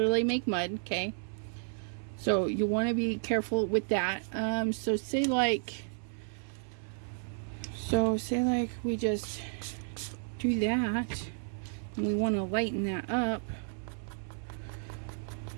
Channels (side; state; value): left; silent; 56 dB below the other